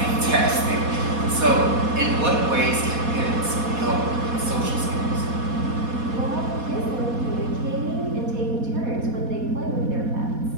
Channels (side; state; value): left; late; 4.2 ms